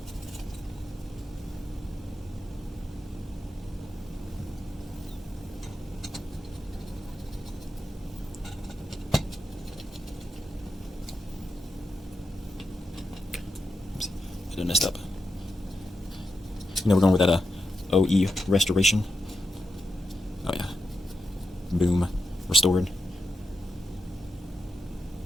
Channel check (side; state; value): both; normal; correlation 0.87